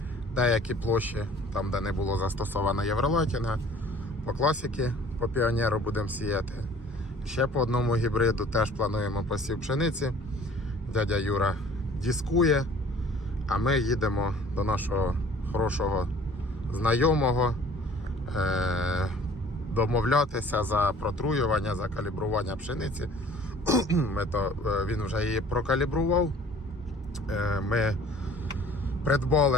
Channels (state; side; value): normal; both; correlation 0.51